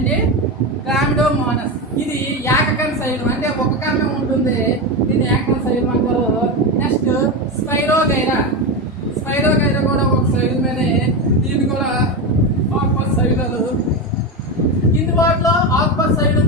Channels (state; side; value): normal; both; correlation 0.15